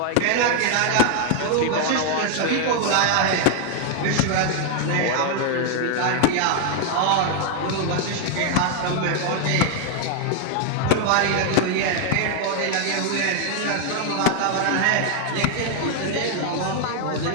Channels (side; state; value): both; different; correlation 0.00